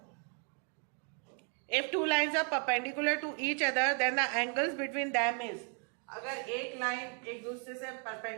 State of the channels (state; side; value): quieter; left; 39.7 dB